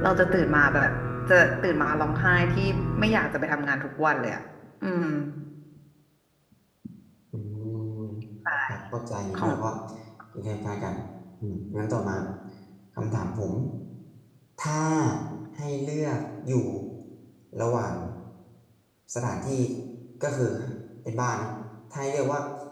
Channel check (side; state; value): both; identical; correlation 1.00